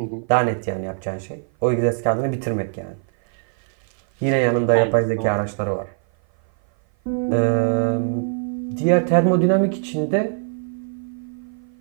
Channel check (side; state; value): left; silent; 56 dB below the other